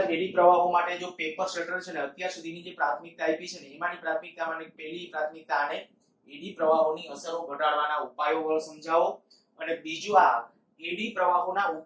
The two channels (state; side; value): identical; both; correlation 1.00